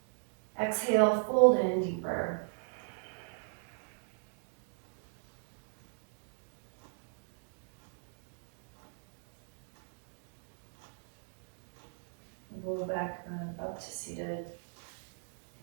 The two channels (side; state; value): left; silent; digital silence